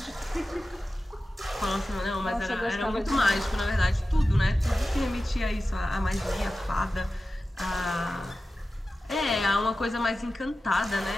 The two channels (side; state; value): both; normal; correlation 0.94